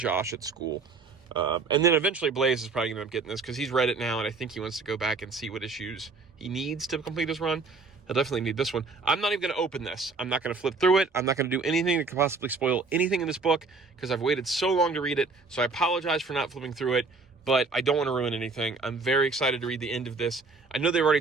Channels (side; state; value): left; quieter; 4.0 dB